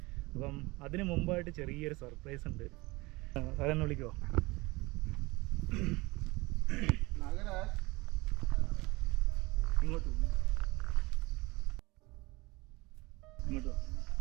അപ്പം അതിന് മുമ്പായിട്ട് ചെറിയൊരു സർപ്രൈസ് ഉണ്ട്. സാറെന്ന് വിളിക്കുമോ? ഇങ്ങോട്ട് ഇങ്ങോട്ട്.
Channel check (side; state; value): left; quieter; 23.1 dB